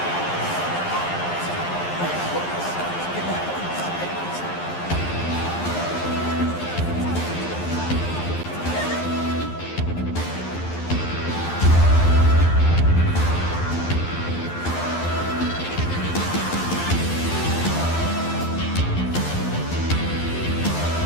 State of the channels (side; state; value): right; late; 11 ms